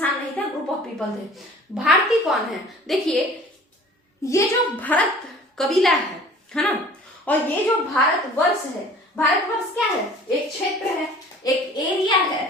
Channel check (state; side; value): normal; both; correlation 0.48